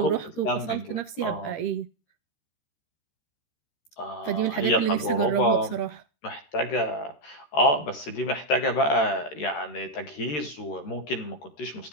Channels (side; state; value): right; late; 13 ms